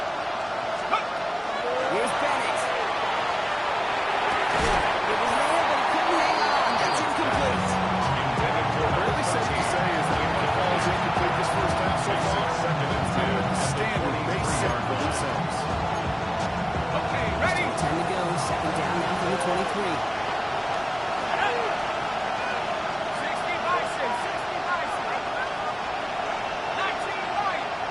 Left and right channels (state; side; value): identical; both; correlation 1.00